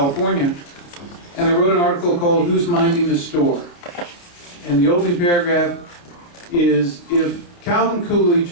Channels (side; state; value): right; late; 29 ms